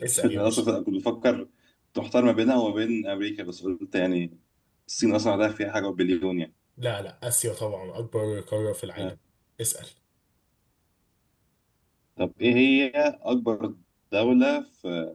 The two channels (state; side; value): identical; both; correlation 1.00